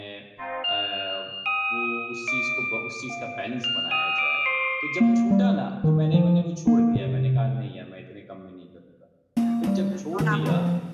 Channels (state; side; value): identical; both; correlation 1.00